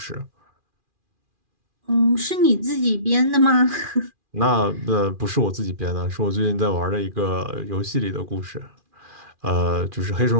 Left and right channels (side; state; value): left; late; 2.4 ms